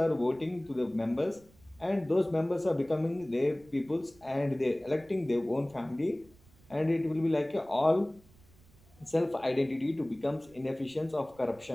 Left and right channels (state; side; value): noise; right; rumble, 27 dB below the sound